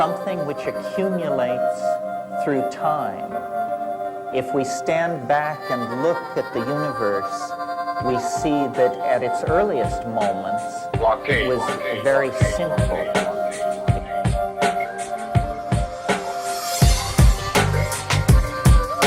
which accumulates through time. If we stand back and look at the universe, we see that at its earliest moments, it was very simple.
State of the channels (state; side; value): identical; both; correlation 1.00